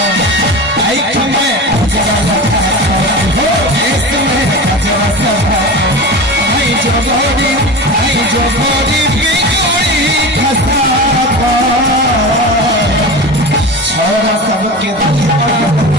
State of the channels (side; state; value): both; normal; correlation 0.28